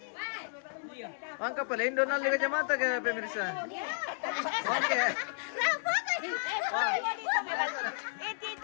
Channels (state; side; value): silent; right; digital silence